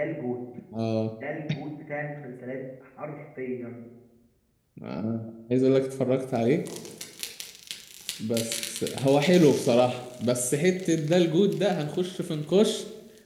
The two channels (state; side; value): identical; both; correlation 1.00